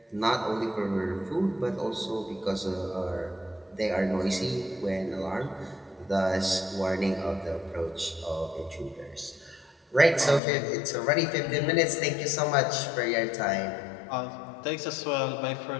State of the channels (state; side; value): drops out; right; at 10.4 s